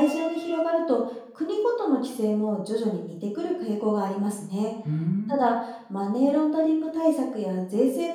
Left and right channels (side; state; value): both; identical; correlation 1.00